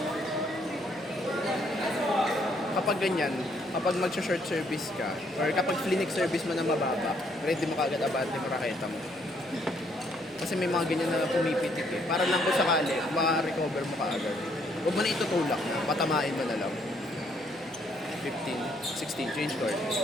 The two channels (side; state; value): both; normal; correlation 0.69